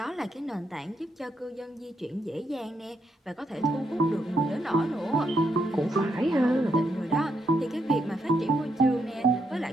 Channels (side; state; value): both; normal; correlation 0.79